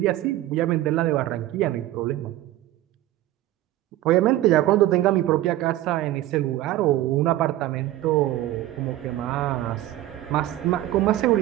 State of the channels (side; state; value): left; quieter; 14.8 dB